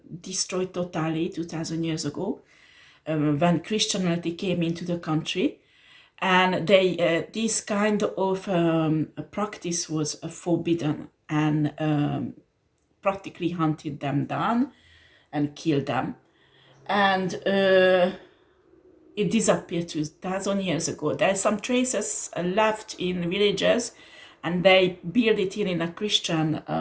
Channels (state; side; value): identical; both; correlation 1.00